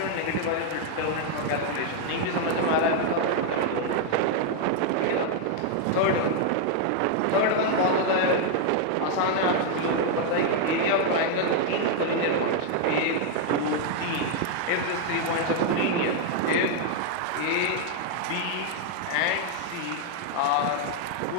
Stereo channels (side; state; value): both; different; correlation 0.00